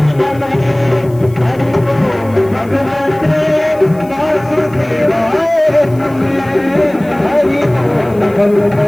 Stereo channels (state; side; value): noise; left; hiss, 26 dB below the sound